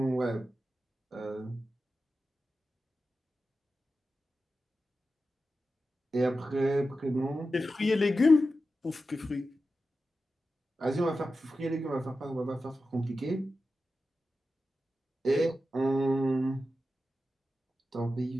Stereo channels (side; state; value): both; normal; correlation 0.92